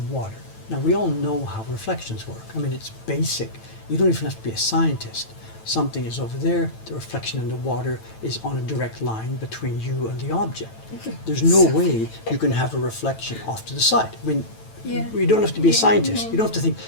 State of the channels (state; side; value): late; right; 9.0 ms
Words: water. Now, we all know how reflections work. I mean, it's basic. You don't even have to be a scientist. Something is over there, the reflection in the water is on a direct line between you and the object. There's no way you can have a reflection off to the side. I mean, you don't have to be a scientist. You don't have to think,